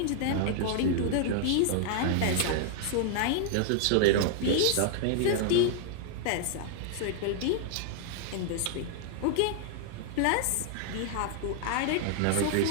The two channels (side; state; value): both; different; correlation 0.00